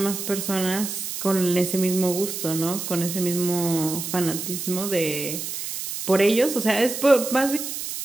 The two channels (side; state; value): right; noise; hiss, 6 dB below the sound